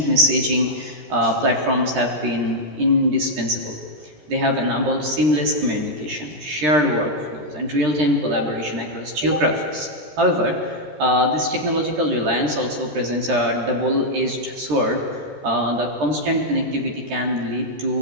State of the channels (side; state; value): left; late; 13 ms